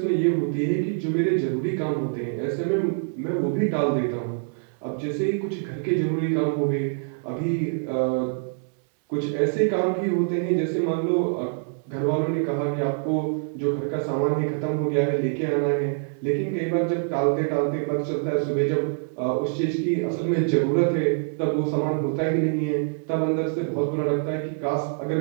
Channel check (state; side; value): silent; left; digital silence